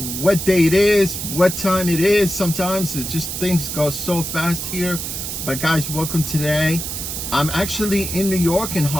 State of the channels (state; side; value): noise; right; hiss, 5 dB below the sound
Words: what day it is, what time it is. Sometimes it just things go so fast here. But guys, welcome today. I'm actually in New York, in